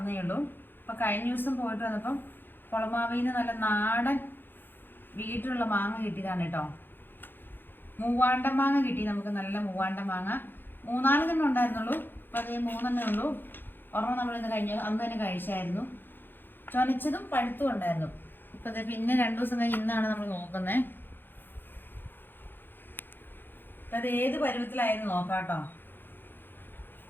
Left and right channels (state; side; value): late; right; 0.097 ms